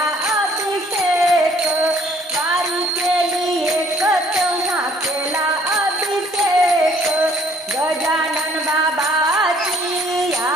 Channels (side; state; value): both; normal; correlation 0.60